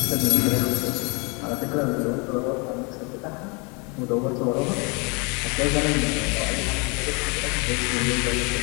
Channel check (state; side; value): quieter; right; 31.1 dB